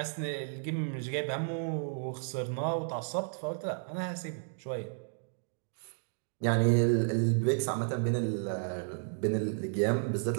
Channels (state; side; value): silent; left; digital silence